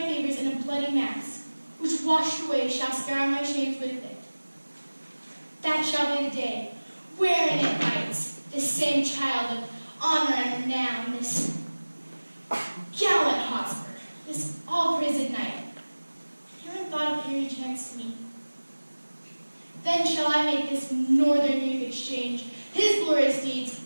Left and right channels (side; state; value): both; inverted; correlation -1.00